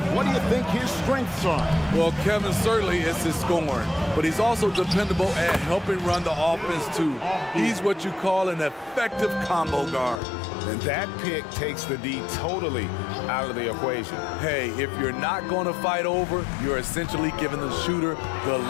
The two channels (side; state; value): right; drops out; at 10.2 s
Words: what do you think his strengths are? Well, Kevin, certainly it's his scoring, but he's also dependable at helping run the offense, too. He's what you call an effective combo guard. And that pick takes the D totally out of the equation. Hey, if you're not going to fight over, you're essentially giving the shooter the